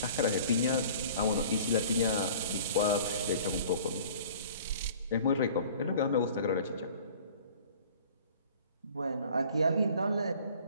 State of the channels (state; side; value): inverted; both; correlation -0.47